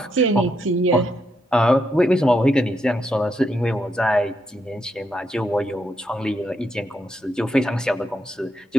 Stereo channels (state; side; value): normal; both; correlation 0.79